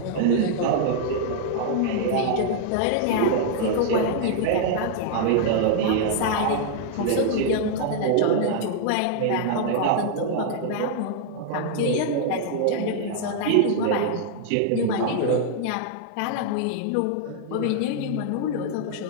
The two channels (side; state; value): both; different; correlation -0.01